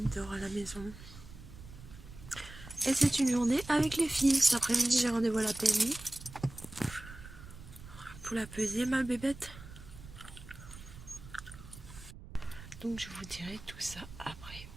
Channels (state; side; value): noise; right; rumble, 15 dB below the sound